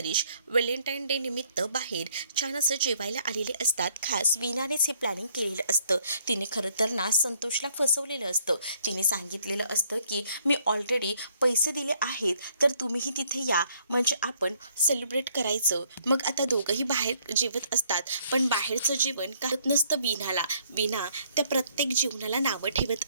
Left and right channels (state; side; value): inverted; both; correlation -0.66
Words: व्हॅलेंटाईन डे निमित्त बाहेर छान असं जेवायला आलेले असतात. खास वीणानेच हे प्लॅनिंग केलेलं असतं. तिने खरं तर ना संतोषला फसवलेलं असतं. तिने सांगितलेलं असतं की मी ऑलरेडी पैसे दिले आहेत तर तुम्हीही तिथे या, म्हणजे आपण सेलिब्रेट करायचं. मग आता दोघंही बाहेर जेवत असतात. पण बाहेरचं जेवण करत नसतं वीणाला. वीणा त्या प्रत्येक जेवणाला नावं